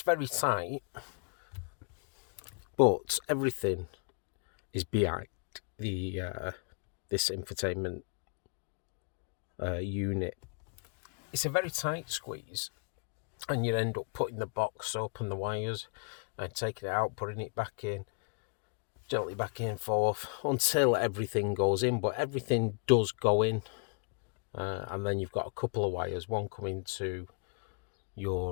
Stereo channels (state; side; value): quieter; right; 39.9 dB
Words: very tight, but everything is behind the this infotainment unit. It's a very tight squeeze, and you end up putting the box up and the wires and taking it out, putting it back in, gently back and forth until everything goes in. But everything does go in, and then you've got a couple of wires, one coming to